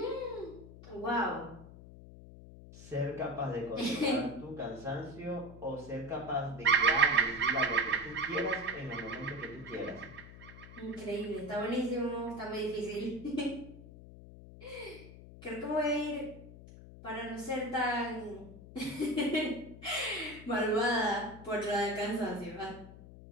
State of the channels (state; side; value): noise; left; hum, 16 dB below the sound